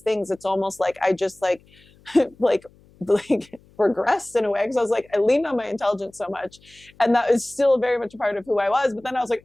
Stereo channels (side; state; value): left; noise; hum, 29 dB below the sound